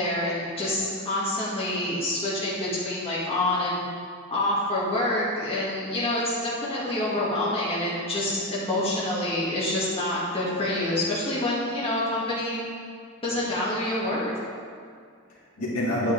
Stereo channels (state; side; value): normal; both; correlation 0.13